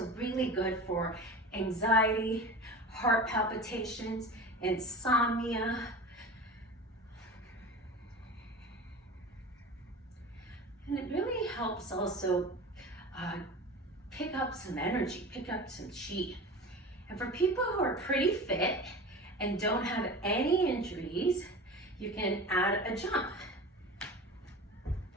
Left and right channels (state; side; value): normal; both; correlation 0.33